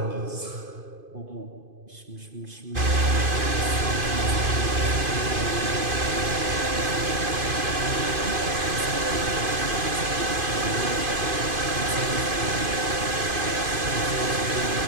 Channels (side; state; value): left; late; 2.5 ms